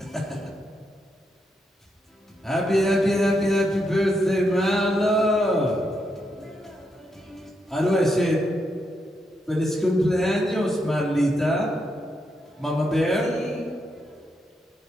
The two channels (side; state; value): both; normal; correlation 0.81